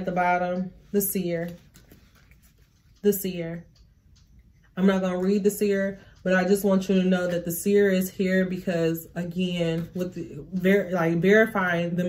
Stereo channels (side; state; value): both; identical; correlation 1.00